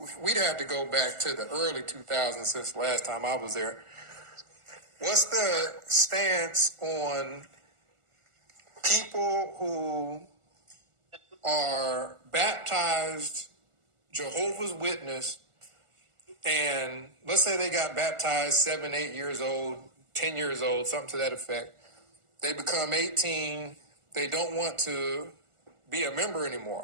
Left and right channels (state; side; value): late; left; 1.4 ms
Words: we'd have to go back to the early 2000s since the last time I was there. What's the stance on people who are baptized Jehovah's Witness, and let's say they got baptized 7, 8 years old, 10 years old, something to that effect. They become 18. They don't want to be a member